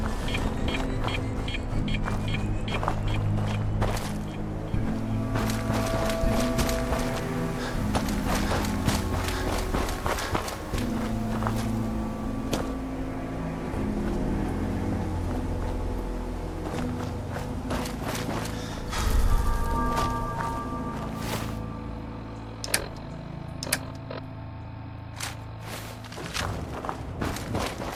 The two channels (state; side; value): identical; both; correlation 1.00